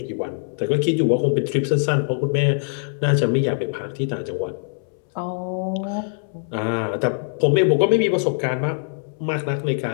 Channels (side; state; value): right; silent; 64 dB below the other